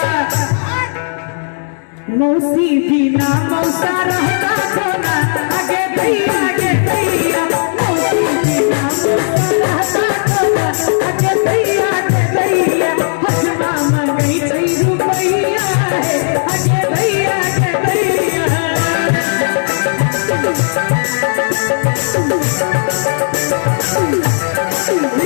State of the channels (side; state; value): right; silent; digital silence